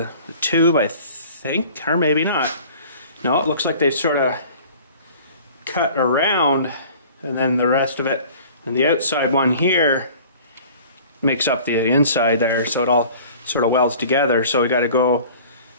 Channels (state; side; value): inverted; both; correlation -0.46